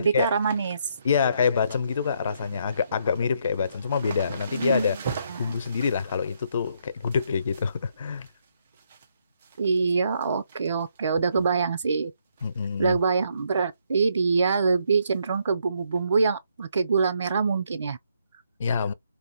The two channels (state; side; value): inverted; both; correlation -0.74